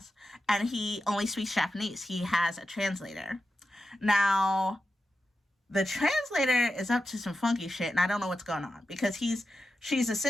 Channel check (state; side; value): normal; both; correlation 0.91